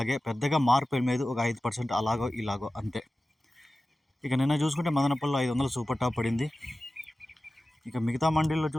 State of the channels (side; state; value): both; normal; correlation 0.95